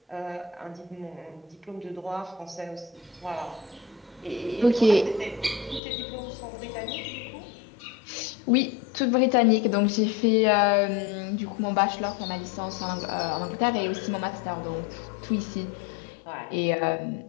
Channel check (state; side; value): drops out; right; at 5.8 s